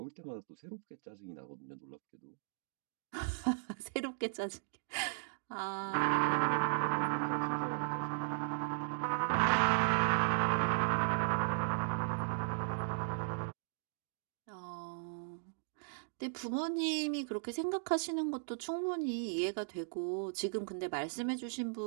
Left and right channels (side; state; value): left; silent; digital silence